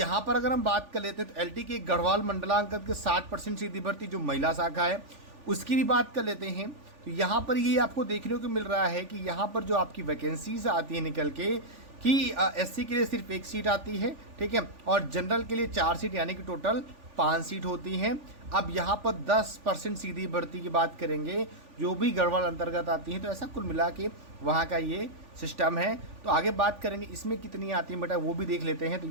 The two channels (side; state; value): left; late; 3.4 ms